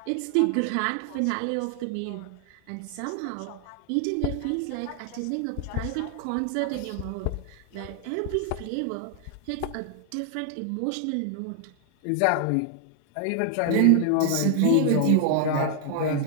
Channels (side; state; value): both; different; correlation 0.00